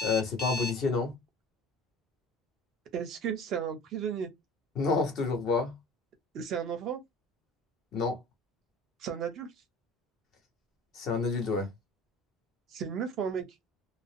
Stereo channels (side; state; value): both; normal; correlation 0.42